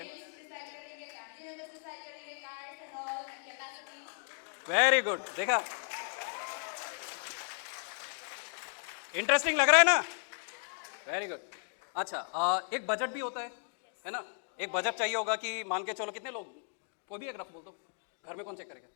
very good. देखा, इंटरेस्टिंग लग रहा है ना? Very good. अच्छा एक बजट भी होता है ना? एक बजट चाहिए होगा कि मान के चलो कितने लोग, कोई भी एक रफ बोल दो, घर में कौन चेक करेगा?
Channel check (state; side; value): silent; right; 54 dB below the other